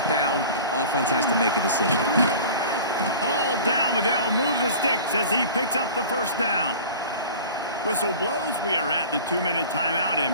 down, offense has to make a decision. All down, but they'll move the sticks as he picks up the first down. Whistle blows. We are at the 2-minute timeout,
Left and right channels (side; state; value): both; inverted; correlation -0.40